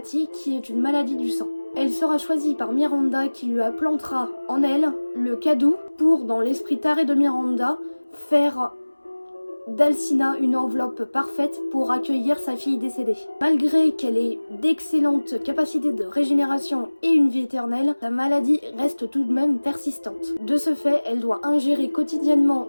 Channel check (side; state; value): both; inverted; correlation -1.00